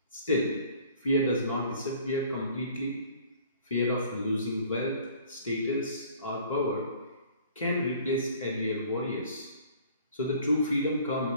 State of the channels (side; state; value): both; inverted; correlation -0.52